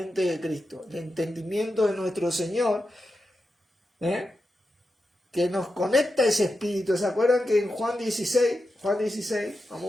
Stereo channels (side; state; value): both; normal; correlation 0.89